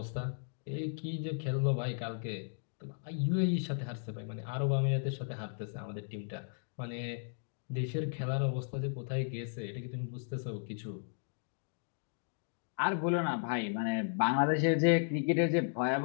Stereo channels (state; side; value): silent; right; digital silence